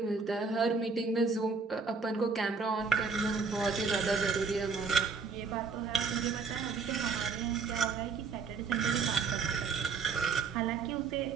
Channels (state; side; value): quieter; left; 5.0 dB